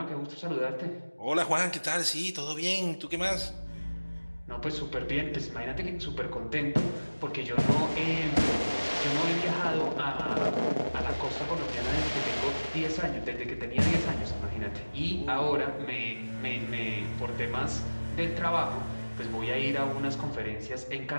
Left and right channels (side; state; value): both; inverted; correlation -1.00